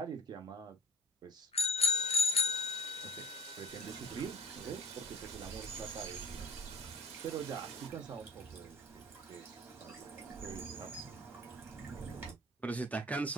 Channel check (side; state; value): both; normal; correlation 0.53